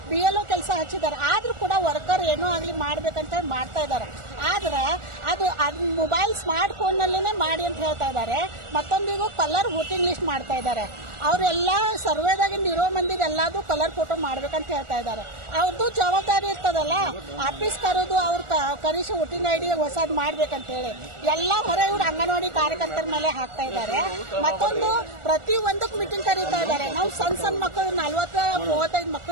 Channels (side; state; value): left; late; 1.4 ms